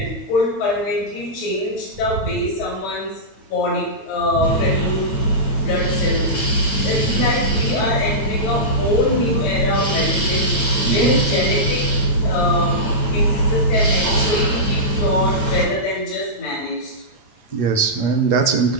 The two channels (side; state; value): right; late; 8.9 ms